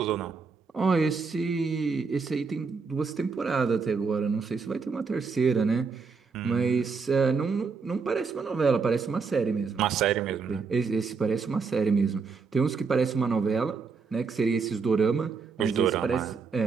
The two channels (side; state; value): left; quieter; 5.0 dB